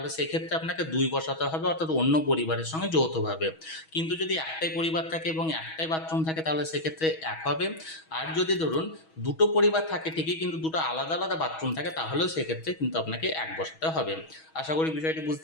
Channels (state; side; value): late; right; 6.2 ms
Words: সেক্ষেত্রে আপনাকে 2 বসাতে হবে অর্থাৎ অন্য পরিবারের সঙ্গে যৌথভাবে। কিন্তু যদি একটাই পরিবার থাকে এবং একটাই বাথরুম থাকে তাহলে সেক্ষেত্রে 1 হবে। আর যদি ধরুন 2টো পরিবার থাকে ঠিকই কিন্তু 2টো আলাদা আলাদা বাথরুম থাকে তাহলেও সেক্ষেত্রে কিন্তু আপনাকে 1 বসাতে হবে। আশা করি বিষয়টি